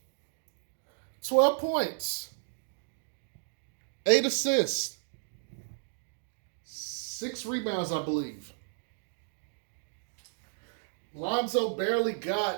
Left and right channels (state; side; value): silent; left; digital silence